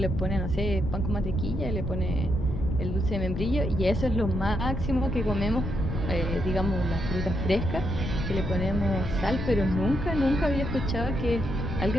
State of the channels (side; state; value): left; noise; rumble, 4 dB below the sound